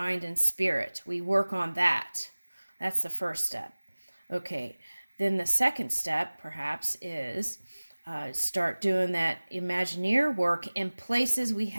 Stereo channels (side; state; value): both; inverted; correlation -1.00